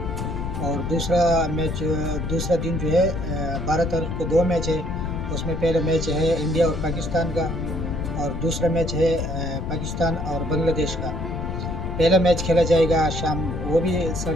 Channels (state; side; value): noise; left; rumble, 4 dB below the sound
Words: और दूसरा दिन जो है 12 तारीख को 2 मैच है। उसमें पहला मैच है इंडिया और पाकिस्तान का, और दूसरा मैच है पाकिस्तान और बांग्लादेश का। पहला मैच खेला जाएगा शाम, वो भी